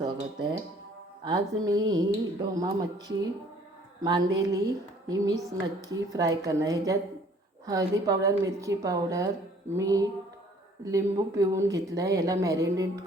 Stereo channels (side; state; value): both; normal; correlation 0.57